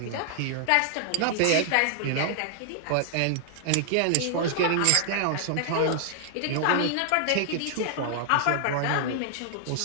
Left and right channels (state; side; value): different; both; correlation -0.01